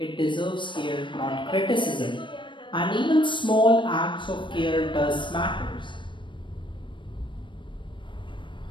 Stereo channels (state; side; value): late; right; 0.24 ms